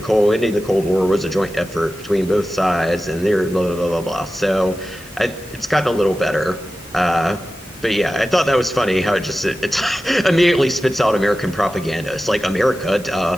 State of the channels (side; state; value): both; normal; correlation 0.94